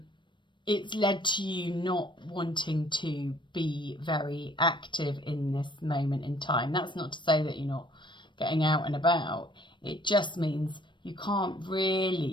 It's led to you not wanting to be very active in this moment in time. That's not to say that you're not getting out and about. It just means you can't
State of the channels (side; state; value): right; late; 0.23 ms